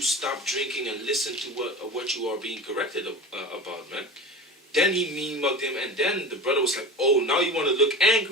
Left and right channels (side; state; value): both; normal; correlation 0.32